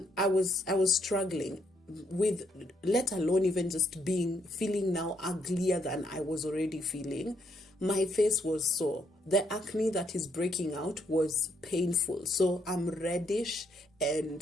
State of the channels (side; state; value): both; normal; correlation 0.73